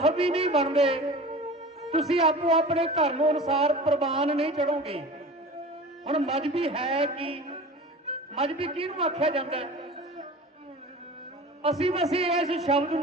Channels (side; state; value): both; normal; correlation 0.37